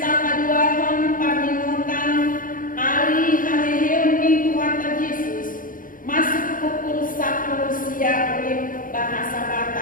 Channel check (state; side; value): late; right; 0.40 ms